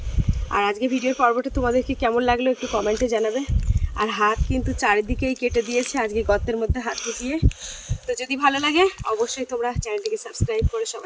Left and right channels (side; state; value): both; identical; correlation 1.00